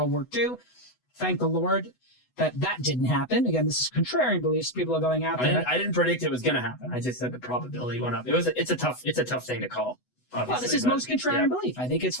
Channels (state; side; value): late; right; 8.0 ms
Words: War II. Thank the Lord that didn't happen. Again, this is contrarian beliefs. People are going out there. I didn't predict it was going to happen. I just said the probability went up. It's a tough thing to call. Well, this is most contrarian belief. I think it's